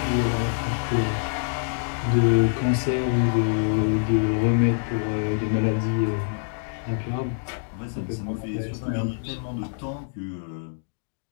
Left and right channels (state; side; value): silent; right; digital silence